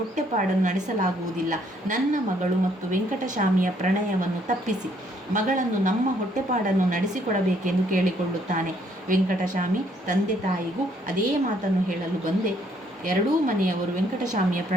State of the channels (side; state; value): both; normal; correlation 0.67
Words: ನಡೆಸಲಾಗುವುದಿಲ್ಲ. ನನ್ನ ಮಗಳು ಮತ್ತು ವೆಂಕಟಸ್ವಾಮಿಯ ಪ್ರಣಯವನ್ನು ತಪ್ಪಿಸಿ ಮಗಳನ್ನು ನಮ್ಮ ಹೊಟ್ಟೆಪಾಡನ್ನು ನಡೆಸಿಕೊಡಬೇಕೆಂದು ಕೇಳಿಕೊಳ್ಳುತ್ತಾನೆ. ವೆಂಕಟಸ್ವಾಮಿ ತಂದೆ ತಾಯಿಗೂ ಅದೇ ಮಾತನ್ನು ಹೇಳಲು ಬಂದೆ. ಎರಡೂ ಮನೆಯವರು ವೆಂಕಟಸ್ವಾಮಿಯ